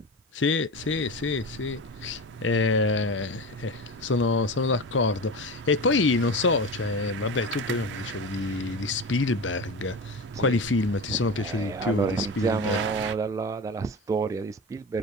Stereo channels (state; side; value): normal; both; correlation 0.27